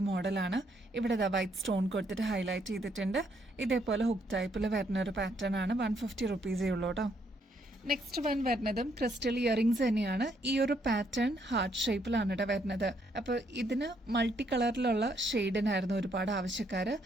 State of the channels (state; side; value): normal; both; correlation 0.72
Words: മോഡലാണ്. ഇവിടെ വൈറ്റ് സ്റ്റോൺ കൊടുത്തിട്ട് ഹൈലൈറ്റ് ചെയ്തിട്ടുണ്ട്. ഇതേപോലെ ഹുക്ക് ടൈപ്പിൽ വരുന്ന ഒരു പാറ്റേൺ ആണ്. 150 റുപ്പീസേ ഉള്ളൂ കേട്ടോ. നെക്സ്റ്റ് വൺ വരുന്നതും ക്രിസ്റ്റൽ ഇയറിംഗ്സ് തന്നെയാണ്. ഈ ഒരു പാറ്റേൺ ഹാർട്ട് ഷേപ്പിലാണ് കേട്ടോ വരുന്നത്. അപ്പൊ ഇതിന് മൾട്ടി കളറിലുള്ള ഷെയ്ഡിനായിരുന്നു ഒരുപാട് ആവശ്യക്കാര്.